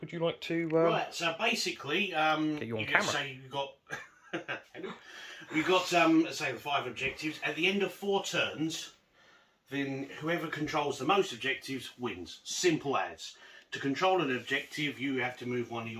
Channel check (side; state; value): both; identical; correlation 1.00